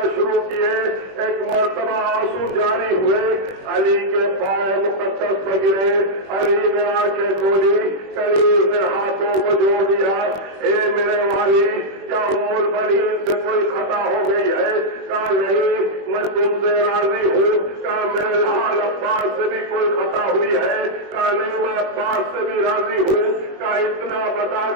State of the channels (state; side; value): late; left; 21 ms